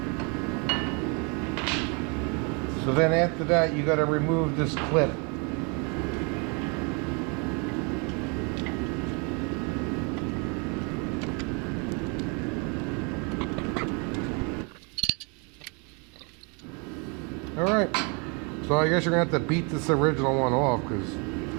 So then after that, you got to remove this clip. All right. So I guess you're going to have to beat this original one off because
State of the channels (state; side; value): quieter; left; 33.6 dB